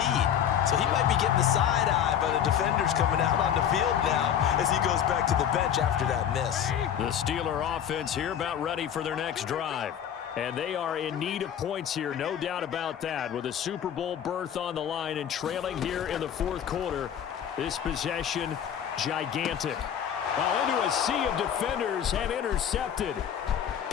So he might be getting the side eye by the defenders coming out on the field now as he goes back to the bench after that miss. The Steeler offense here about ready for their next drive. And they are in need of points here, no doubt about that, with a Super Bowl berth on the line and trailing here in the fourth quarter. This possession, gigantic. Well, into a sea of defenders and intercepted.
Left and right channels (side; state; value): right; quieter; 9.2 dB